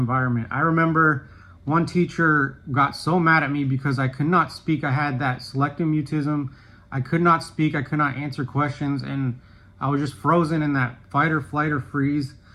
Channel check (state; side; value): identical; both; correlation 1.00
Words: I remember one teacher got so mad at me because I could not speak. I had that selective mutism. I could not speak. I could not answer questions. And I was just frozen in that fight or flight or freeze.